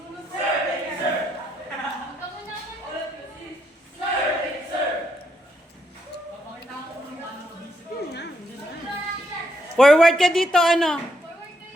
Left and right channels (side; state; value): both; normal; correlation 0.77